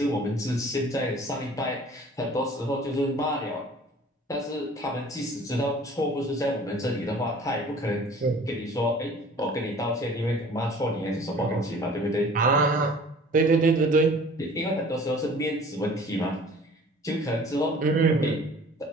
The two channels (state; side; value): normal; both; correlation 0.48